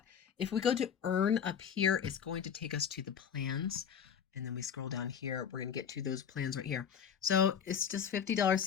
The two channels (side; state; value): right; quieter; 7.9 dB